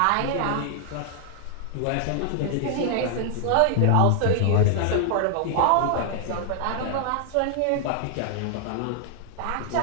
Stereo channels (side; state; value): both; different; correlation 0.00